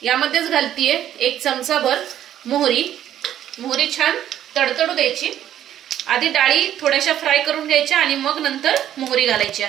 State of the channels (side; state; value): left; quieter; 11.2 dB